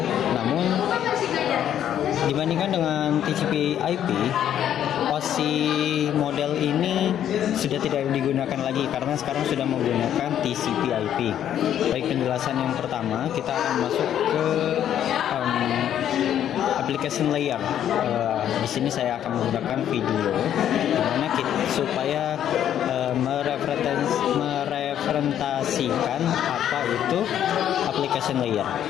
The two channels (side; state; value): right; quieter; 10.3 dB